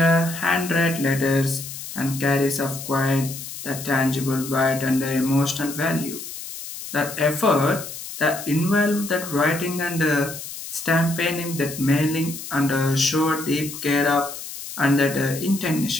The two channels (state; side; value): noise; left; hiss, 10 dB below the sound